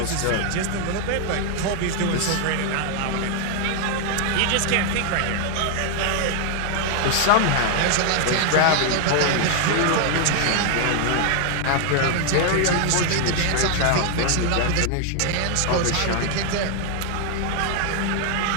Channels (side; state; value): both; different; correlation 0.00